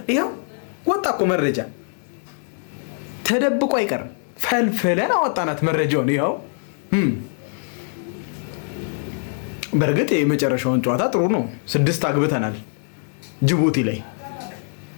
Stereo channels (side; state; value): right; silent; 61 dB below the other